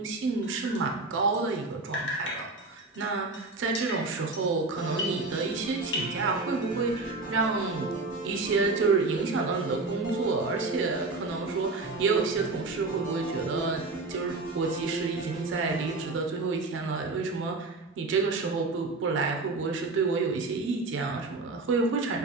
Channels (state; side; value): quieter; left; 3.5 dB